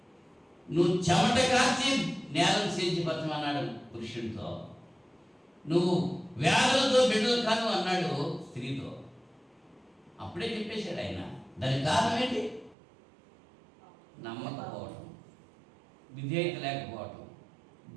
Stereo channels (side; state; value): left; drops out; at 12.8 s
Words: నువ్వు చెమట కాచి నేలను సేద్యపరచమన్నాడు పురుషుడితో. నువ్వు వ్యాధులతో బిడ్డలు కాను అన్నాడు స్త్రీతో. అప్పుడే చెప్పేశాడు ఆయన. దానికి కారణం ఏంటి? నమ్మకపోవటం, విధేయత లేకపోవటం,